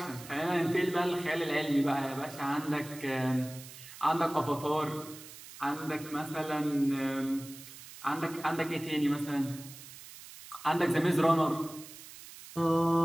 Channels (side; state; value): right; noise; hiss, 16 dB below the sound